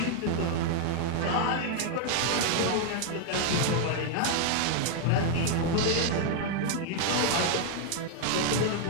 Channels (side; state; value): both; different; correlation 0.00